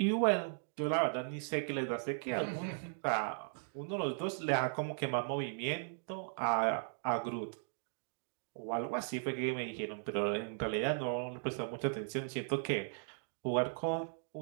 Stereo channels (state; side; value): silent; left; digital silence